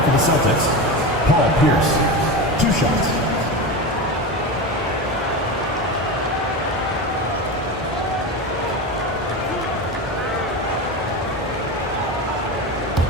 for the Celtics, Paul Pierce. 2 shots.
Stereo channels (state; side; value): normal; both; correlation 0.22